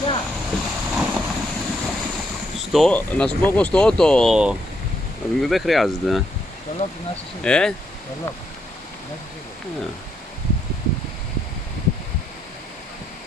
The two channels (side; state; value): both; normal; correlation 0.76